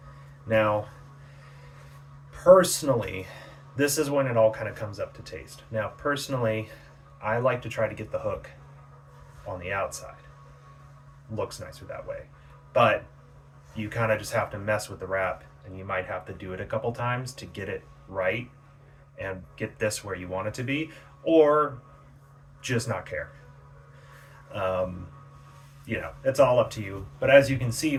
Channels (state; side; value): identical; both; correlation 1.00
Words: Now, personally, this is when it all kind of comes up to taste. Now, personally, I like to try to get the hook on the outside. Looks nicer that way. But you kind of just have to mess with the wrap, and you might have to do it a couple times to get it right and get this where you want it to be, or just not care. Um, it's all up to you. But as you can see,